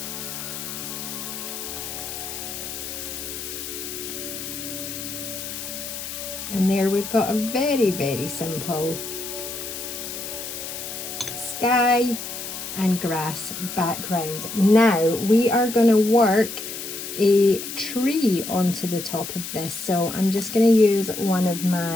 And there we've got a very, very simple sky and grass background. Now we are going to work a tree onto the top of this. So I'm just going to use one of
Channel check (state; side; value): noise; left; hiss, 8 dB below the sound